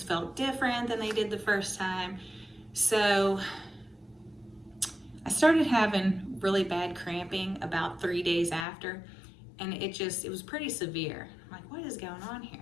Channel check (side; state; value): right; drops out; at 8.7 s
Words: felt different than they did the first time. So I started having really bad cramping about 3 days after, and it was pretty severe. I'm like, what is going on here?